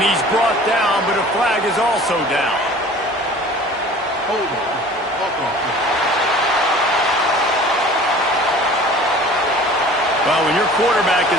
he's brought down, but a flag is also down. Well, when your quarterback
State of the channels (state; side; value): normal; both; correlation 0.45